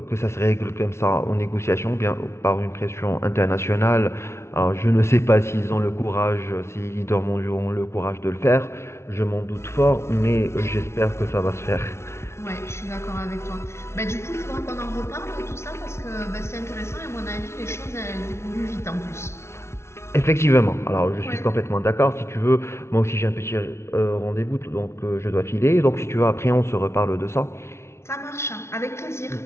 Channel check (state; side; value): late; right; 0.13 ms